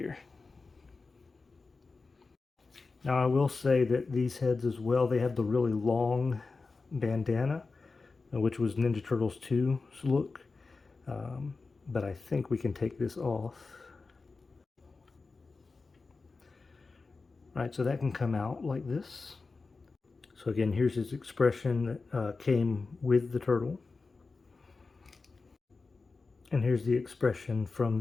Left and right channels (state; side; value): quieter; right; 4.1 dB